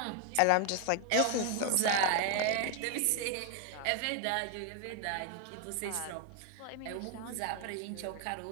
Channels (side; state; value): both; different; correlation 0.00